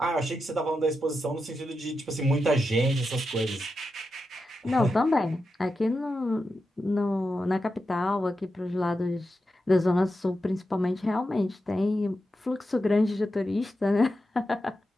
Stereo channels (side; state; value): both; normal; correlation 0.88